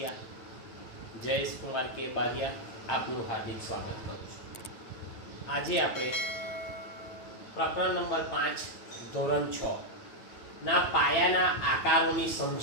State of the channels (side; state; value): right; late; 9.2 ms